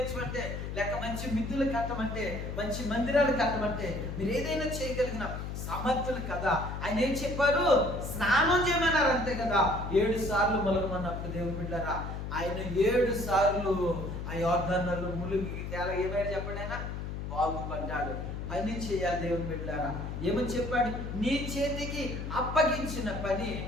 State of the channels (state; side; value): noise; left; hum, 6 dB below the sound